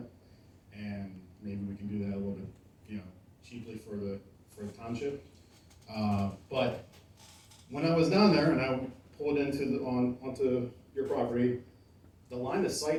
and maybe we can do that a little bit, cheaply for the township. But when I was down there and I pulled onto your property, the line of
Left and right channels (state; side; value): identical; both; correlation 1.00